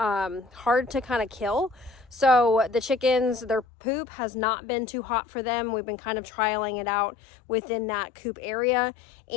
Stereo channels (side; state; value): right; drops out; at 3.7 s